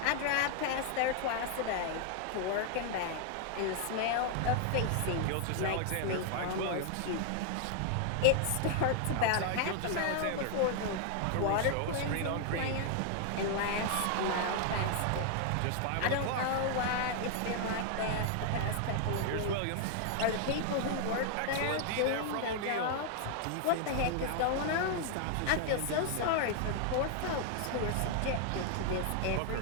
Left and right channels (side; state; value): both; different; correlation 0.00